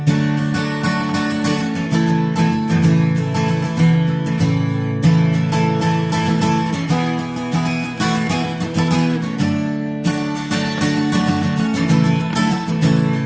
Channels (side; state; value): left; noise; hum, 27 dB below the sound